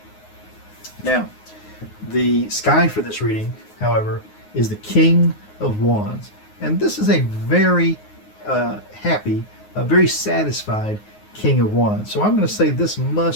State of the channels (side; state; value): right; late; 9.5 ms